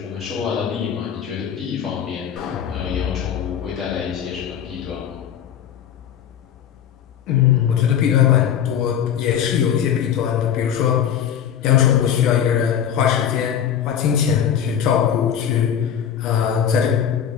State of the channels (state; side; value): quieter; right; 8.9 dB